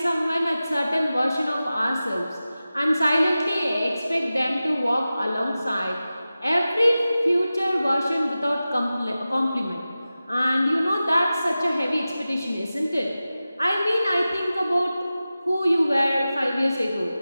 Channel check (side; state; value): both; inverted; correlation -0.95